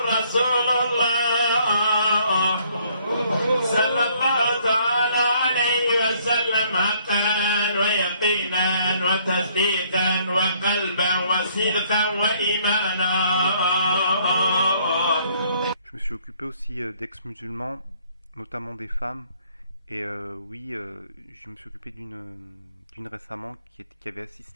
رسول الله صلى الله تعالى عليه وسلم حقا ويقينا وتصديقا وقلبا وصدقا وإيمانا. Je me suis occupé aussi d'ex-musulmans, notamment des femmes. Et oui, je me suis occupé d'une récemment qui avait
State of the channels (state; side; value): inverted; both; correlation -0.63